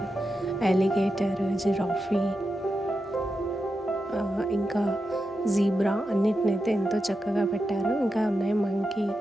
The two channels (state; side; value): normal; both; correlation 0.88